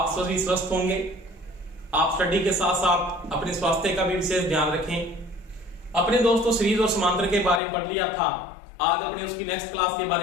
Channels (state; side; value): drops out; right; at 7.6 s